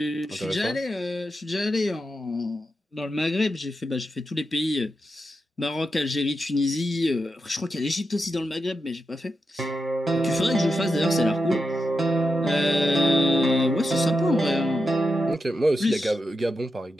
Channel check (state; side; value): normal; both; correlation 0.87